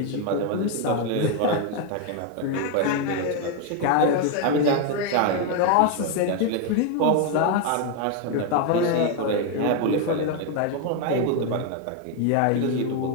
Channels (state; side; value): different; both; correlation 0.01